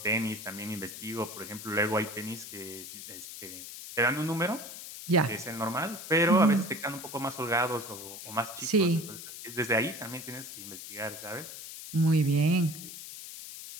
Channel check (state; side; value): noise; left; hiss, 11 dB below the sound